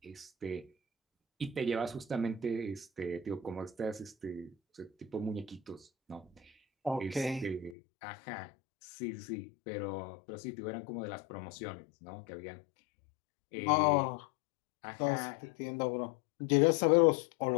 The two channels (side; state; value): right; drops out; at 7.8 s